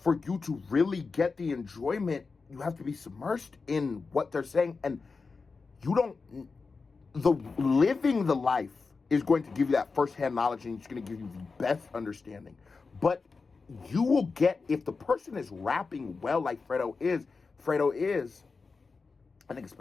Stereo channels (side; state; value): right; quieter; 4.5 dB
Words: you to really get the enjoyment, you have to be submersed in what they're saying. And you don't, living the life is going to give you that firsthand knowledge, and it's going to give you the best understanding. But you will get, if the person is rapping well like Fredo is, I think it